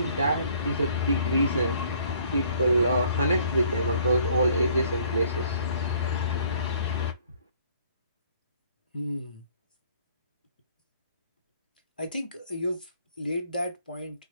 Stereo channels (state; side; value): inverted; both; correlation -0.59